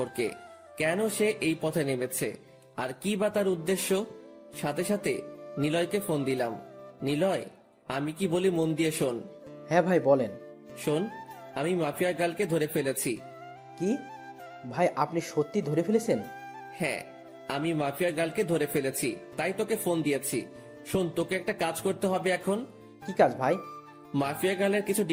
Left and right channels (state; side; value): identical; both; correlation 1.00